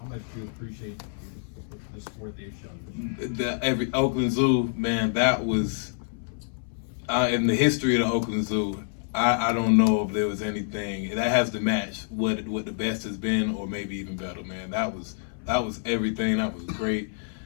much do you appreciate the support they've shown? Every Oakland Zoo, man, that was in the history of the Oakland Zoo. I don't know if there was anything that has to match what the best has been, or maybe even better, man. That was everything. That was great,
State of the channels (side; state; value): right; silent; 60 dB below the other